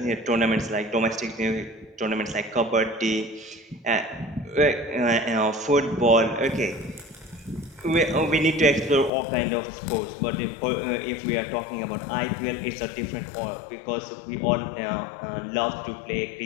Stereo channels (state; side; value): drops out; right; at 9.1 s